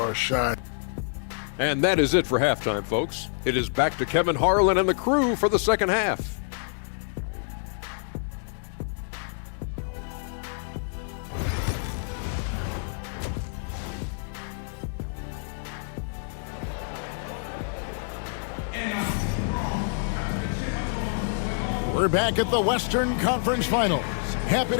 shine. And that is it for halftime, folks. It is back to Kevin Harlan and the crew for the second half. We're back at the Western Conference Finals. Happy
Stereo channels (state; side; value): silent; right; digital silence